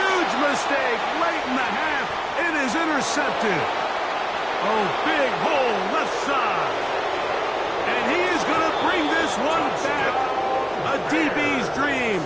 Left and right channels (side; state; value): both; identical; correlation 1.00